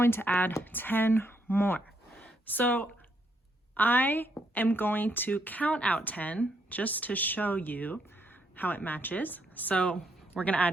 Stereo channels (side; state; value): both; normal; correlation 0.75